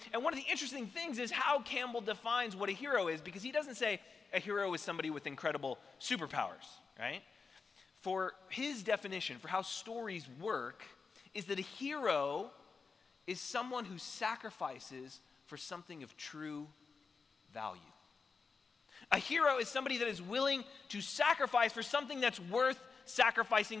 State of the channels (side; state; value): right; quieter; 4.9 dB